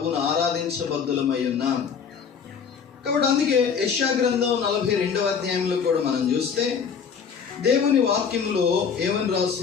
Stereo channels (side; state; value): right; quieter; 6.6 dB